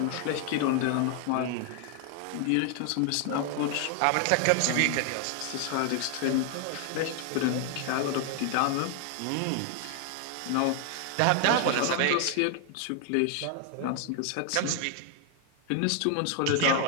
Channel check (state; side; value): different; both; correlation 0.00